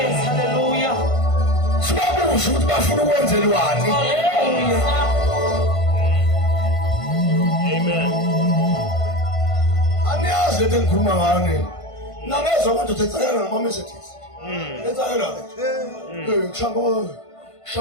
hallelujah. Sibabuza ukuthi bafuna ukwenzelwani. Amen. Aniyazi into engikhuluma ngani nangezwa manje uthethakala ngama-messages enzakela-ke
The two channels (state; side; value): late; right; 1.5 ms